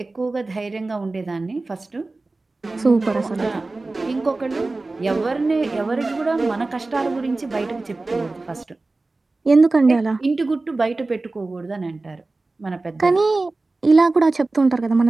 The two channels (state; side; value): quieter; left; 3.3 dB